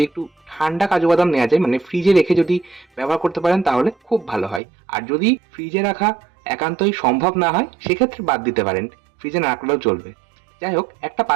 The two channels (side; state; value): left; drops out; at 4.6 s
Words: একটু ঠান্ডা কাজু বাদাম নেওয়া যায়, মানে ফ্রিজে রেখে যদি ব্যবহার করতে পারেন তাহলে খুব ভালো হয়। আর যদি ফ্রিজে রাখা একান্তই সম্ভব না হয় সেক্ষেত্রে বাদ দিতে পারেন, ফ্রিজে না রাখলেও চলবে। যাই হোক, একটা